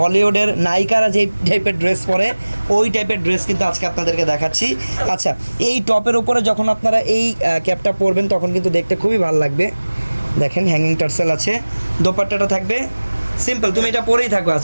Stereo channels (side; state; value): both; inverted; correlation -1.00